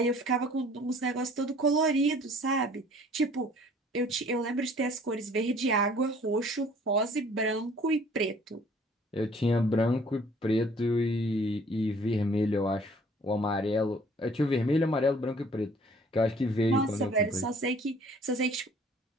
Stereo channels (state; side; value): normal; both; correlation 0.55